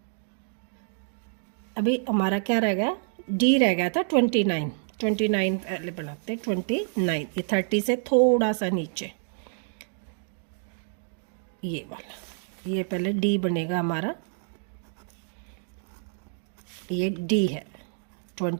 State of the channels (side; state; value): left; silent; digital silence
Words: अभी हमारा क्या रह गया, डी रह गया था 29 पहले बनाते हैं 29, ये 30 से थोड़ा सा नीचे ये वाला, ये पहले डी बनेगा हमारा, ये डी है